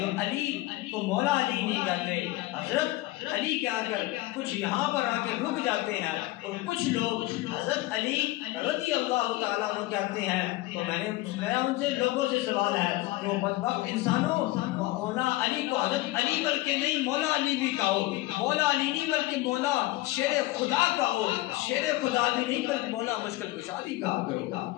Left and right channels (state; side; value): quieter; right; 18.7 dB